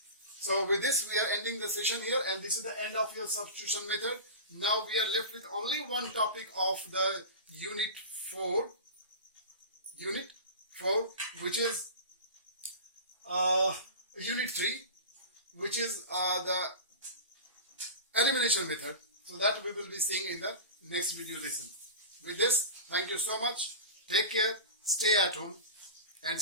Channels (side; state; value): both; inverted; correlation -0.30